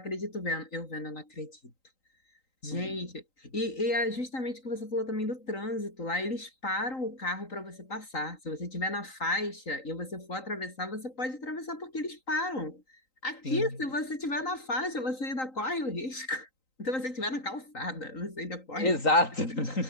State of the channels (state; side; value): late; right; 3.9 ms